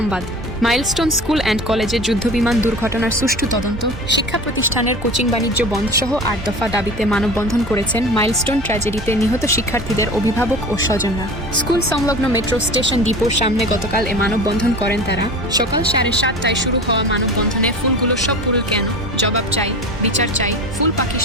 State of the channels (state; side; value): normal; both; correlation 0.35